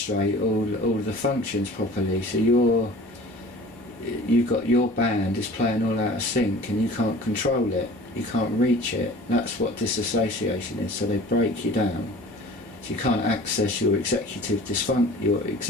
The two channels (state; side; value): normal; both; correlation 0.44